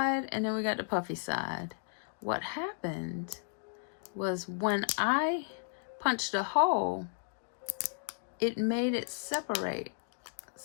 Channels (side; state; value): right; silent; digital silence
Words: and then we got the puffy side. What happened was when I punched a hole, it made it separate.